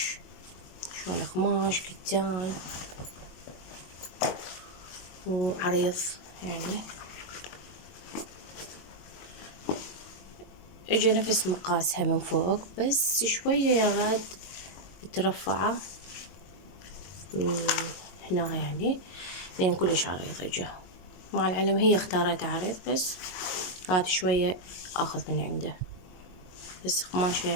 شلون قماش كتان وعريض يعني. اجا نفس مقاسها من فوق، بس شوية يا غاد مترفعة من هنا يعني، لين كلش عريض اجا. مع العلم هي اختارت عريض، بس قالت شوية اخذ من عنده، بس قماشة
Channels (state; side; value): late; right; 22 ms